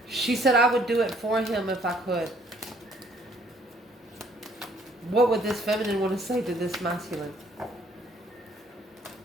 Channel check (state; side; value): normal; both; correlation 0.63